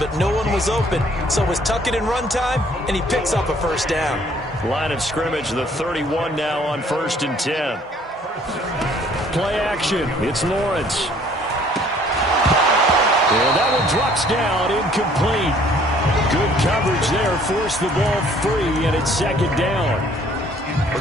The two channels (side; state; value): both; normal; correlation 0.59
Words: no one was open. So it was tuck it in run time, and he picks up a first down. Line of scrimmage, the 31 now on 1st and 10. Play action. It's Lawrence. And that one drops down, incomplete. Good coverage there, forced the ball free, and it's second down. Well,